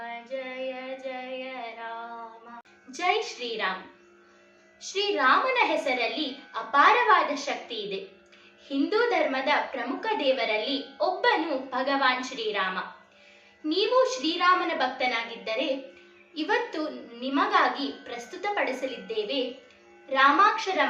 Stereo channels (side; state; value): both; identical; correlation 1.00